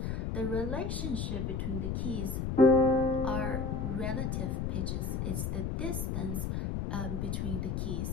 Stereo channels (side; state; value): left; noise; rumble, 1 dB below the sound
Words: The relationship between the keys are relative pitches. It's the distance between the